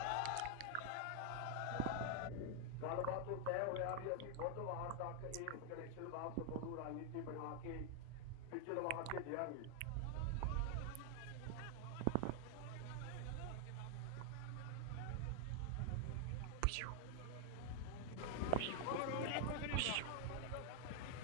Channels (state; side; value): different; both; correlation 0.00